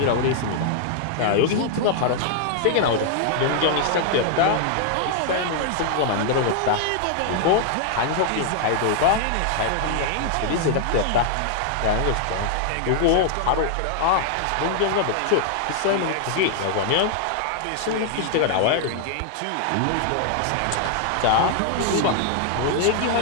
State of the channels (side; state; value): both; different; correlation 0.00